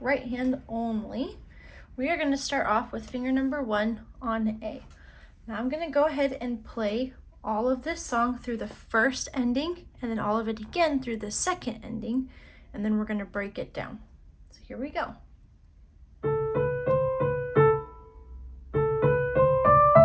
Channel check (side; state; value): both; identical; correlation 1.00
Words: right hand only. We are going to start off with finger number 1 on A. Now I'm going to go ahead and play all of this song through the first ending and then all of it again through the second ending, and then we're going to break it down. So here we go.